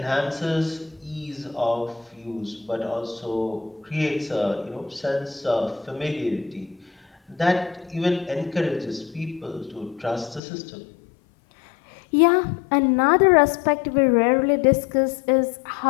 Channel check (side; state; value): right; drops out; at 10.4 s